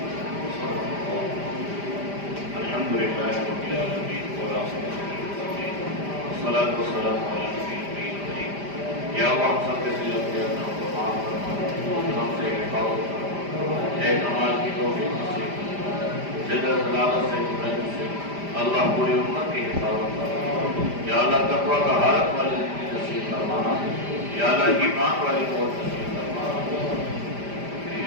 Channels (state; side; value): late; left; 5.0 ms